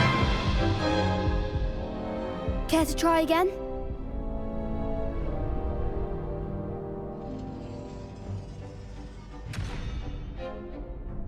Care to try again?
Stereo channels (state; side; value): identical; both; correlation 1.00